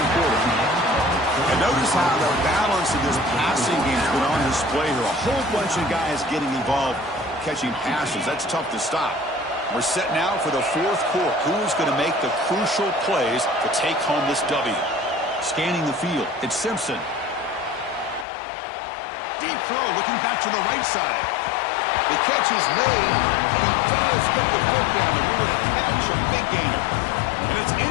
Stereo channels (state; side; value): drops out; right; at 18.2 s